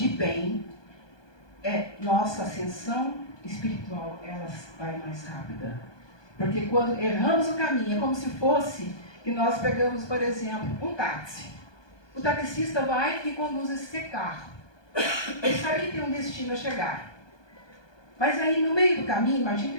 bem, nossa ascensão espiritual ela vai mais rápida. Porque quando erramos o caminho, é como se fosse que nós pegamos, por exemplo, um táxi. O taxista vai e conduz esse carro. Ele sabe que tem um destino a chegar. Mas aí, no meio do caminho, imagina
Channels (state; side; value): late; right; 1.2 ms